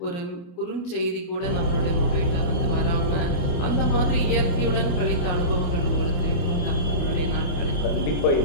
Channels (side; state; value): right; late; 28 ms